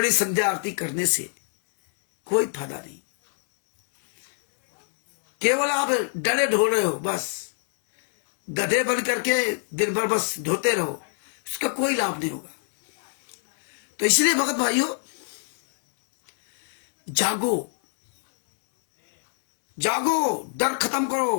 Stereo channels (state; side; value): silent; right; 62 dB below the other